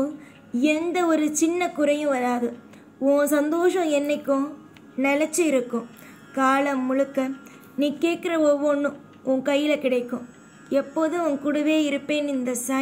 எந்த ஒரு சின்ன குறையும் வராது. உன் சந்தோஷம் என்னைக்கும் நிலச்சி இருக்கும். காலம் முழுக்க நீ கேட்குற ஒவ்வொன்றும் உன் கையில் கிடைக்கும். எப்போதும் உன் கூடவே இருப்பேன் இந்த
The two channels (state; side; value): identical; both; correlation 1.00